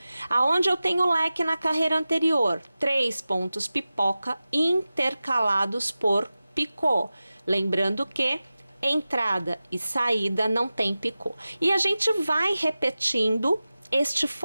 Aonde eu tenho leque na carreira anterior, 3 pontos pipoca intercalados por picô. Lembrando que entrada e saída não tem picô. E a gente vai repetindo este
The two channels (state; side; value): inverted; both; correlation -0.95